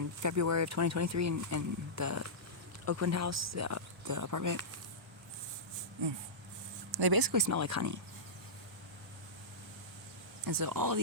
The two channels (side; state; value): both; normal; correlation -0.15